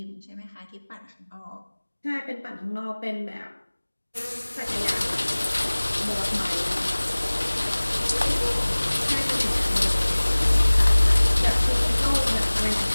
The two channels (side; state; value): both; inverted; correlation -1.00